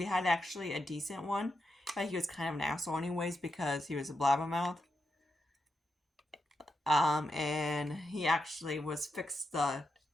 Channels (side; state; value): both; normal; correlation 0.86